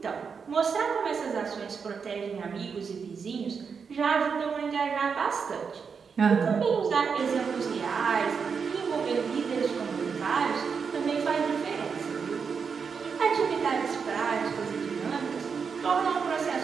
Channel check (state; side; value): quieter; left; 5.9 dB